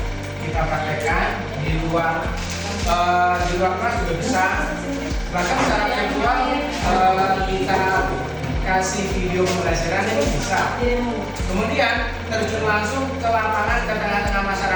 kita praktekkan, di luar kelas juga bisa. Bahkan secara virtual kita kasih video pembelajaran ini bisa. Kemudian terjun langsung ke lapangan, ke tengah-tengah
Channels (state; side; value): identical; both; correlation 1.00